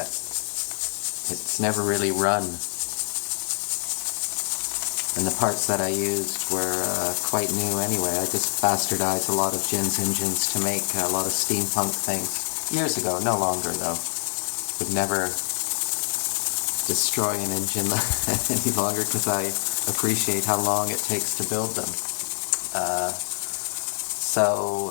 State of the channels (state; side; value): silent; right; digital silence